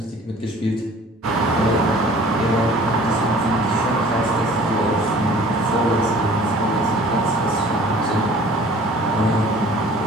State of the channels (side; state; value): both; normal; correlation 0.49